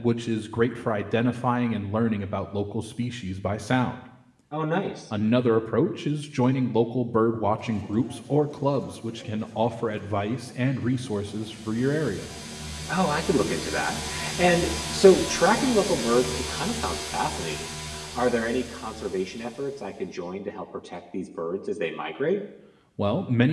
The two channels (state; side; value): identical; both; correlation 1.00